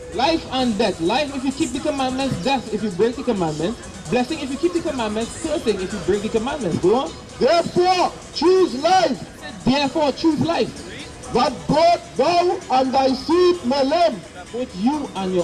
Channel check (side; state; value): both; identical; correlation 1.00